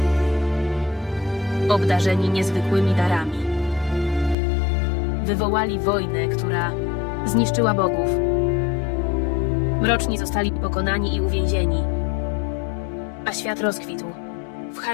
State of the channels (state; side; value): drops out; right; at 4.4 s